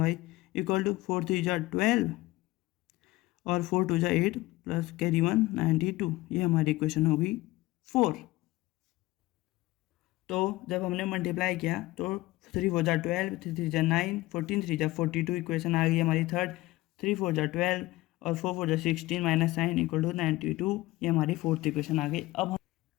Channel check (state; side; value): quieter; right; 18.8 dB